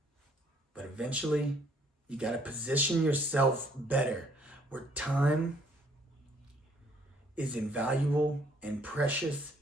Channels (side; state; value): both; normal; correlation 0.64